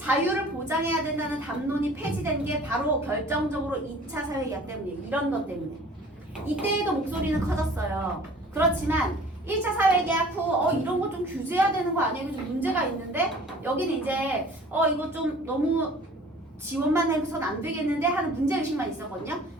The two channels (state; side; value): normal; both; correlation 0.48